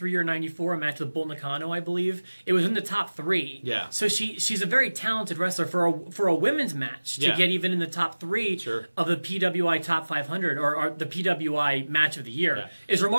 or 94, a match with Bull Nakano, I believe, it was in the top 3. Yeah. So she's a very talented wrestler for a women's match to get even in the top 3 of the PWI Top 500 or the PWI Match of the Year is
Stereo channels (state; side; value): inverted; both; correlation -1.00